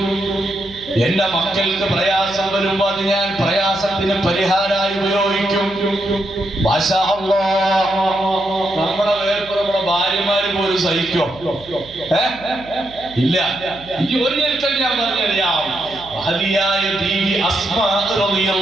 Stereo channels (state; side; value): noise; right; hum, 20 dB below the sound